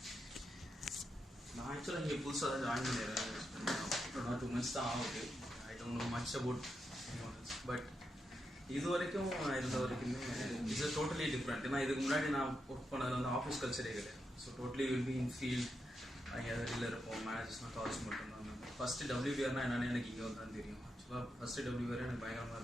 நான் ஆக்சுவலாக இங்கே புதுசாக தான் ஜாயின் பண்ணிடுறேன், 2 months தான் ஆகுது. I don't know much about but இது வரைக்கும் இருந்த வரைக்குமே இட்ஸ் டோட்டலி டிஃப்ரெண்ட். ஏன்னா இதுக்கு முன்னாடி நான் ஒர்க் பண்ணது வந்து ஆஃபீஸ் கல்ச்சரே கிடையாது. So totally will be in field, அங்கே வெளியில் இருப்போம், மேனேஜர்ஸ்லாம் கால்ஸ் மட்டும்தான். ஃபஸ்ட்டு WBRனா என்னென்னு எனக்கு இங்கே வந்து தான் தெரியும். ஆக்சுவலாக ஃபஸ்ட்டு WBR எனக்கு பயங்கரமாக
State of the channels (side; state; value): both; normal; correlation 0.85